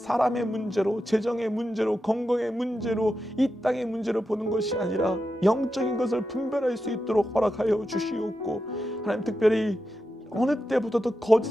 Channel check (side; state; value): both; normal; correlation 0.89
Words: 문제로, 재정의 문제로, 건강의 문제로, 이 땅의 문제로 보는 것이 아니라 영적인 것을 분별할 수 있도록 허락하여 주시옵고, 하나님, 특별히 어느 때보다도